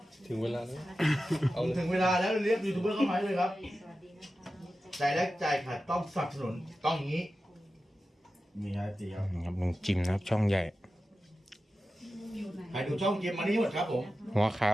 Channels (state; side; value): normal; both; correlation 0.93